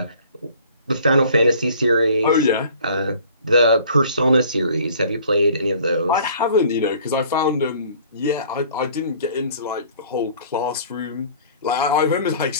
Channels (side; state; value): both; inverted; correlation -0.52